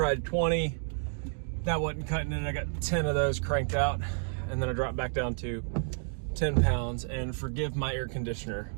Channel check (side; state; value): left; silent; digital silence